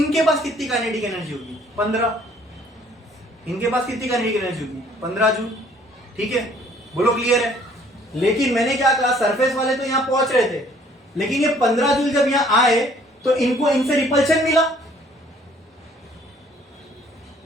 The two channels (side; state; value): both; normal; correlation 0.59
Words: पास कितनी काइनेटिक एनर्जी होगी, 15। इनके पास कितनी काइनेटिक एनर्जी होगी, 15 जूल। ठीक है, बोलो क्लियर है? लेकिन मैंने क्या कहा, सरफेस वाले तो यहां पहुंच रहे थे, लेकिन ये 15 जूल जब यहां आए तो इनको इनसे रिपल्शन मिला,